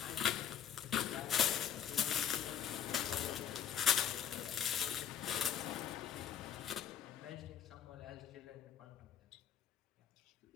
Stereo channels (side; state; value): right; quieter; 8.8 dB